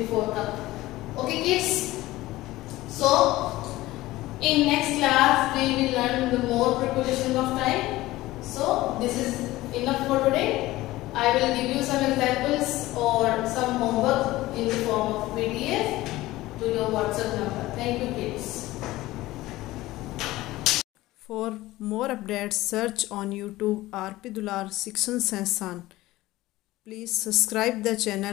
cup. Okay kids, so in next class we will learn the more prepositions of time. So this is enough for today. I will give you some examples or some homework in the form of PDF to your WhatsApp number. Thank you kids. For more updates, search on YouTube RP Dular Section Sansan. Please subscribe the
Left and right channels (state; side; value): quieter; right; 17.6 dB